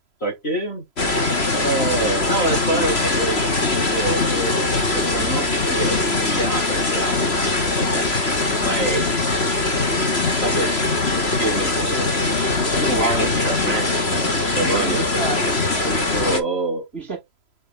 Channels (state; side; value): late; right; 3.0 ms